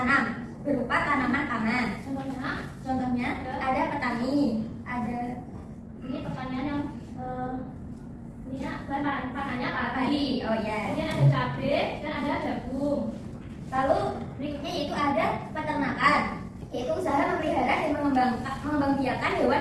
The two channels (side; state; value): both; identical; correlation 1.00